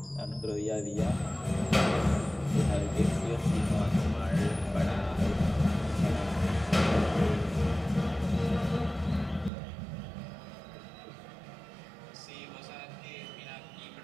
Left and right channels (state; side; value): drops out; left; at 9.5 s